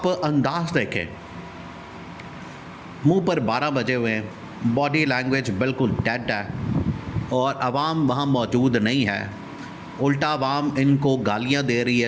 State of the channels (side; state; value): both; identical; correlation 1.00